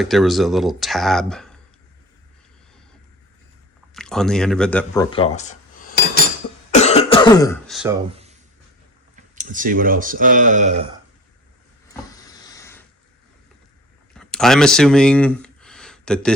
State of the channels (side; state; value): both; normal; correlation 0.40